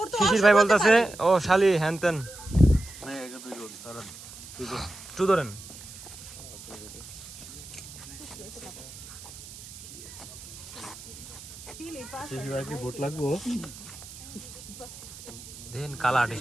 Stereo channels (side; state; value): right; noise; hiss, 15 dB below the sound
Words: তো শিশির ভাই বলতেছে ও শালি হ্যানতেন। টু ধরেন। ভোট লাগবো দেখেন কালা